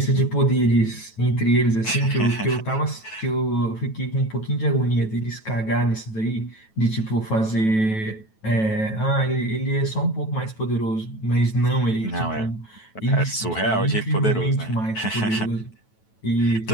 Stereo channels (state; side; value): late; right; 9.2 ms